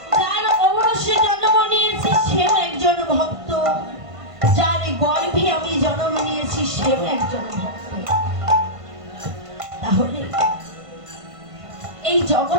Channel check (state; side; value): late; left; 1.5 ms